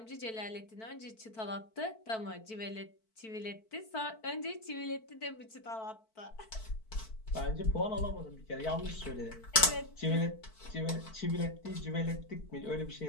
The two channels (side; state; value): right; late; 4.5 ms